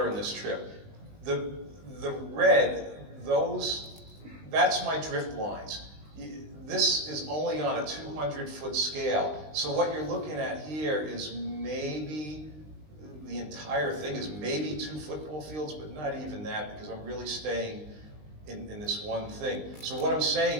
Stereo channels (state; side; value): late; left; 19 ms